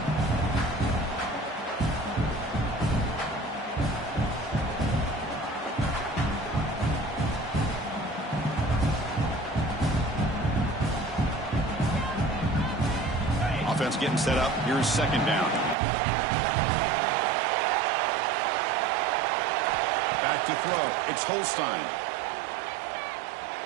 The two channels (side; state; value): left; drops out; at 15.8 s